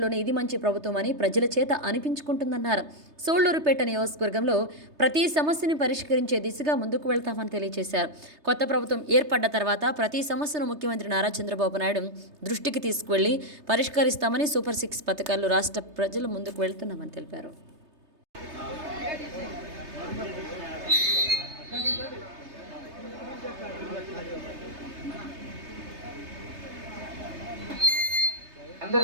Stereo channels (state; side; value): late; left; 3.3 ms